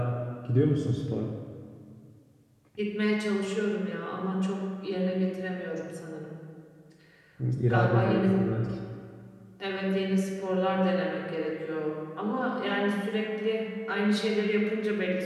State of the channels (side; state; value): both; identical; correlation 1.00